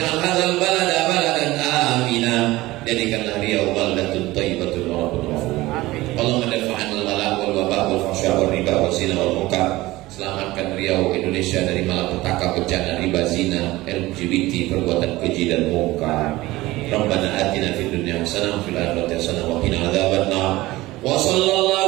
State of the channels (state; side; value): quieter; left; 18.7 dB